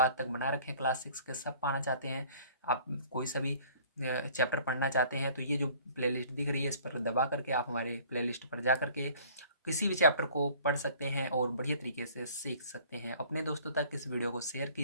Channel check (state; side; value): inverted; both; correlation -0.52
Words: तक बना रखे हैं क्लास 6 के, सब पाना चाहते हैं, आप कोई सभी चैप्टर पढ़ना चाहते हैं, तो ये जो प्लेलिस्ट दिख रही है, इस पर दबा करके आप हमारे प्लेलिस्ट पर जा करके किसी भी चैप्टर को पढ़ सकते हैं और बढ़िया तरीके से सीख सकते हैं। अपने दोस्तों तक इस वीडियो को शेयर